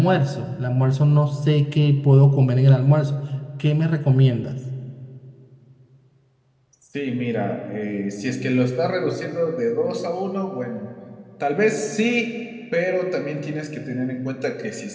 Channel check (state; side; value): identical; both; correlation 1.00